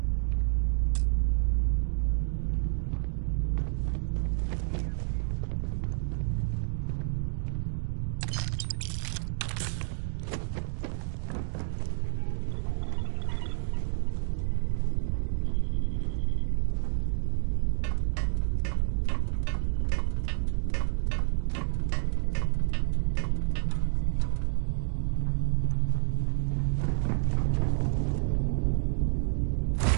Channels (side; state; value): left; silent; digital silence